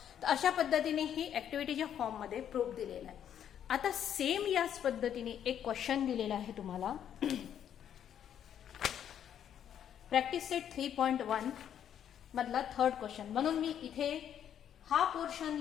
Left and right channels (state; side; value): quieter; right; 9.5 dB